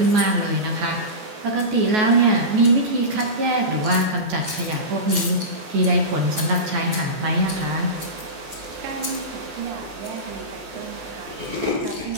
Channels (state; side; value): late; left; 14 ms